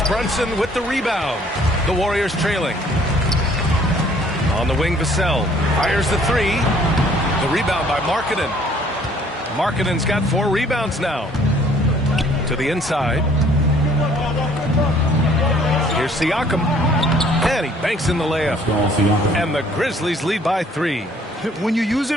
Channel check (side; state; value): both; normal; correlation 0.59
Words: Brunson with the rebound. The Warriors trailing. On the wing, Vassell fires the 3. The rebound by Markkanen. Markkanen's got 4 rebounds now. To the inside. Here's Siakam. And he banks in the layup. And the Grizzlies lead by 3. When you use